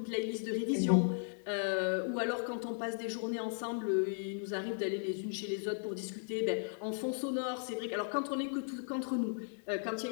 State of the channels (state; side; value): silent; right; digital silence